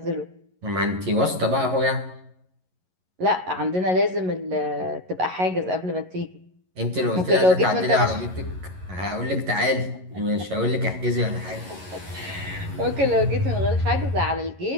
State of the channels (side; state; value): left; late; 11 ms